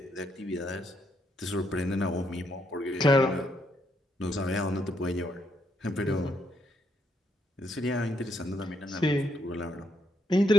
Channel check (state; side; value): normal; both; correlation 0.75